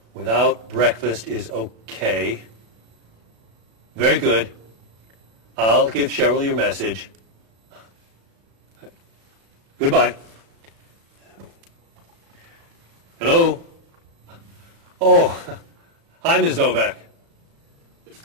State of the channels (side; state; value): left; late; 36 ms